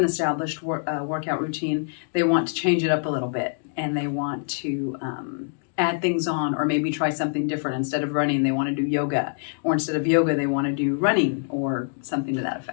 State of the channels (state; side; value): silent; right; digital silence